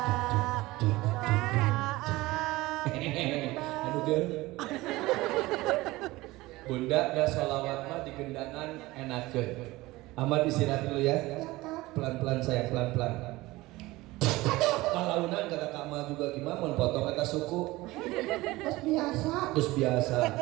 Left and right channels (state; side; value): quieter; left; 19.6 dB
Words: Aduh girl. Bunda dah sholawat mah di gendangan enakeun. Ahmad istirahat dulu ya. Pelan-pelan saya, pelan-pelan. Palaunan kata Kak Ma juga gimana mau potong kata suku. Terus biasa. Terus biasa.